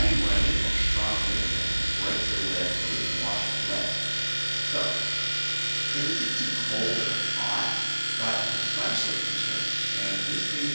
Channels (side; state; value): both; inverted; correlation -1.00